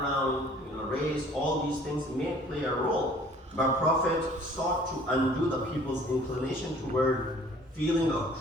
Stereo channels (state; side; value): normal; both; correlation 0.53